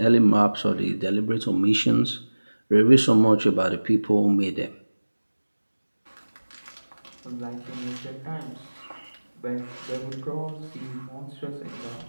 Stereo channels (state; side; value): inverted; both; correlation -1.00